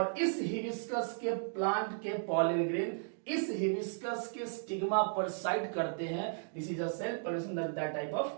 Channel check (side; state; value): left; silent; digital silence